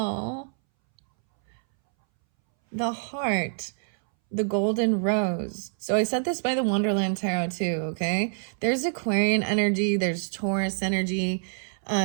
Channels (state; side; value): silent; left; 61 dB below the other